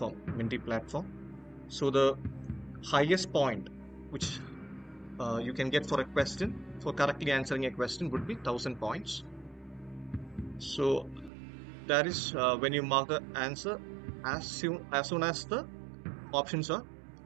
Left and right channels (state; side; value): drops out; left; at 11.3 s